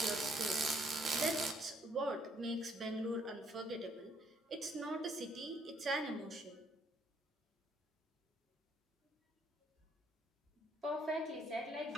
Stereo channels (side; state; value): both; normal; correlation 0.67